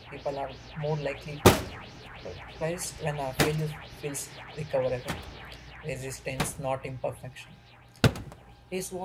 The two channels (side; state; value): both; identical; correlation 1.00